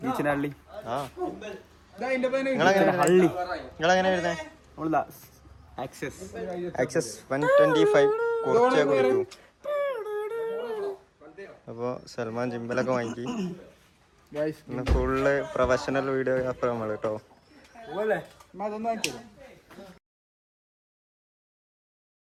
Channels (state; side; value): identical; both; correlation 1.00